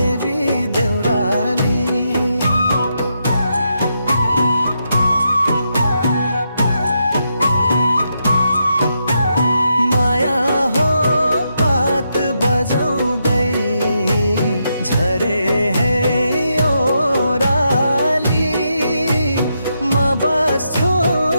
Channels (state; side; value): inverted; both; correlation -0.82